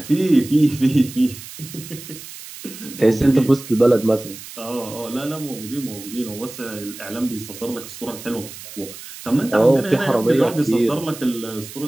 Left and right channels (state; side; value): noise; right; hiss, 14 dB below the sound